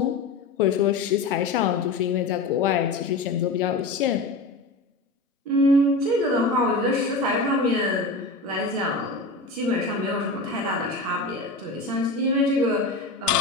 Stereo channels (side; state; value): right; quieter; 3.2 dB